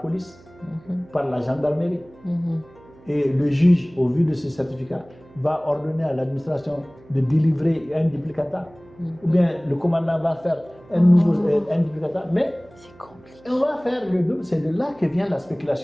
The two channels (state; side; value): noise; right; hum, 25 dB below the sound